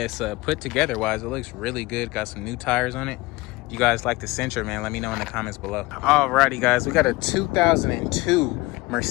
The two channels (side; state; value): right; quieter; 21.6 dB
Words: put together wise, it looks really good. Got some new tires on it. You guys like the Sentra, man, let me know in the comments below. Alrighty, guys, we got a 2002